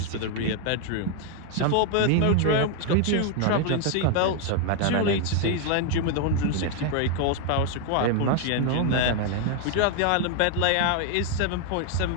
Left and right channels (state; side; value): different; both; correlation 0.01